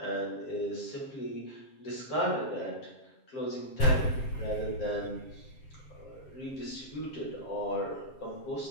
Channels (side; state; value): right; late; 7.5 ms